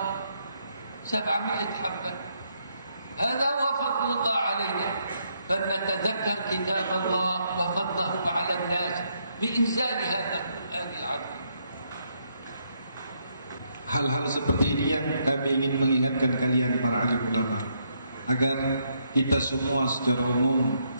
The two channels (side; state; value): both; inverted; correlation -0.75